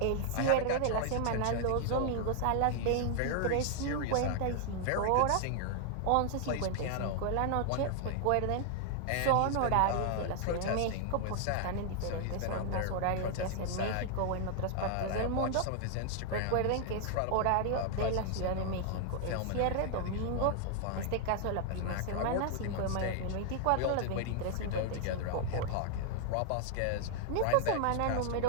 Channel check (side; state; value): both; different; correlation 0.00